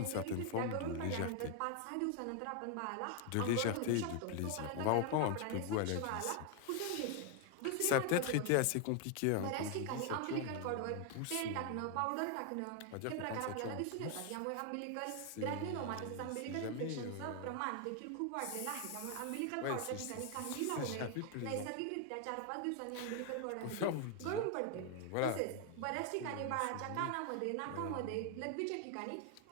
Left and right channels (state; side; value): different; both; correlation 0.01